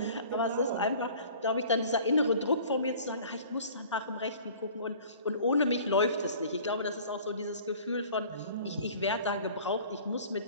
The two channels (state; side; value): inverted; both; correlation -0.48